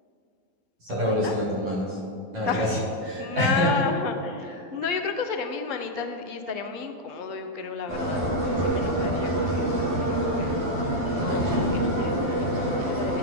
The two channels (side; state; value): left; late; 12 ms